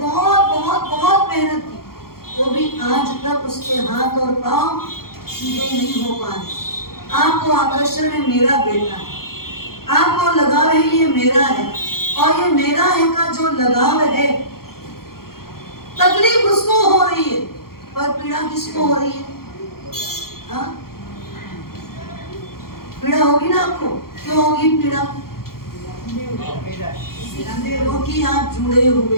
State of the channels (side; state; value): right; late; 0.93 ms